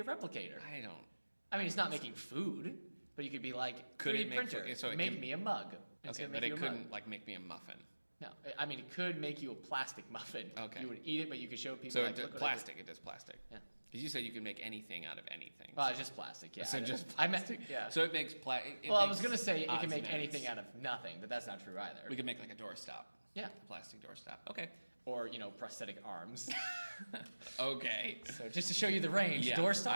a replicator. I mean, it's not making food, but you could be like, Could 3D it make printer, food? So it make can- me a mug. It's Okay, gonna but make it you a mug. couldn't like make me a muffin. No, I mean, it could make you a plastic muffin. Okay. You would eat it, but you could show people So like, it does look what I did. plastic. It does plastic. Yeah. Because you said you can make anything out of anything. Well, it's just plastic, yeah. So just I meant, plastic. yeah. So it makes Well, I was going to say it odds can make and ends. anything out of nothing, but that's not true either. We could make like a doorstop. Yeah. A plastic doorstop. Okay. Or, prosthetic arms. Okay. So just to show you the range, Yeah, doorstops,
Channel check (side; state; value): both; inverted; correlation -1.00